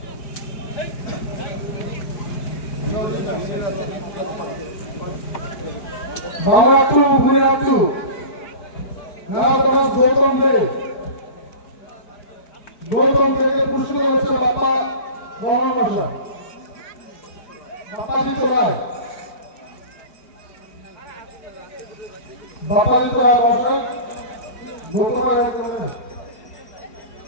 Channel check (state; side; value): late; right; 4.5 ms